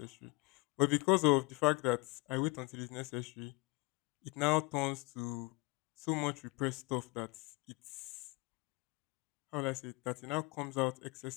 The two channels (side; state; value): right; quieter; 26.9 dB